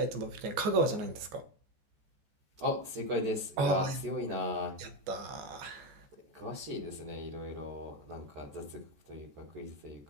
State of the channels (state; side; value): late; left; 14 ms